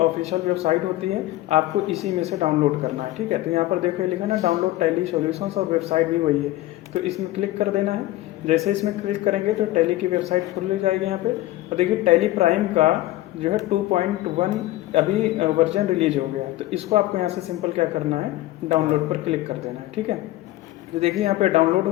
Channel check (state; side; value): quieter; right; 16.5 dB